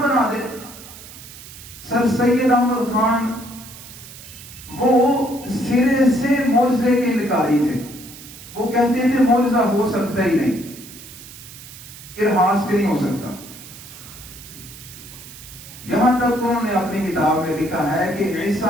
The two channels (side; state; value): right; noise; hiss, 16 dB below the sound